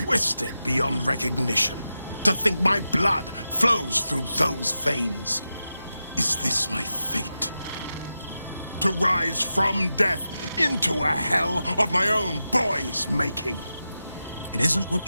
beyond recognition. To think my blood flows through those veins. Is this my fate? To rise from death into a hell of my own boy's making? It isn't what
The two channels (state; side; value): inverted; both; correlation -0.91